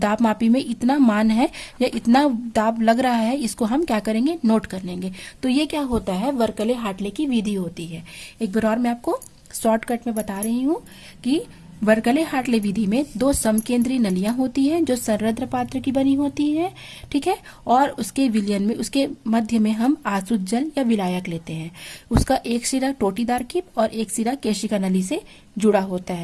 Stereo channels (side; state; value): both; identical; correlation 1.00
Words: मापी में इतना मान है या इतना दाब लग रहा है, इसको हम क्या करेंगे, नोट कर लेंगे। तो ये क्या होता है, वर्कले हार्टले की विधि होती है। एक बार और मैं आपको शॉर्टकट में बता रही हूँ कि वर्कले हार्टले विधि में दो समकेंद्रीय नलियां होती हैं जो संरंध्र पात्र की बनी होती है। ठीक है, और उसके विलयन में उसके मध्य में हम आसुत जल या विलायक लेते हैं। उसका एक सिरा टोटीदार कीप और एक सिरा केशिका नली से जुड़ा होता